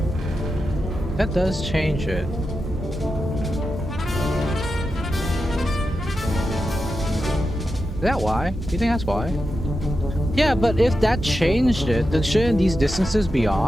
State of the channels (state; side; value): normal; both; correlation 0.89